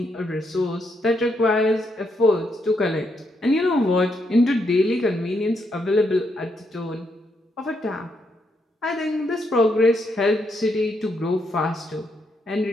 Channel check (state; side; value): normal; both; correlation 0.78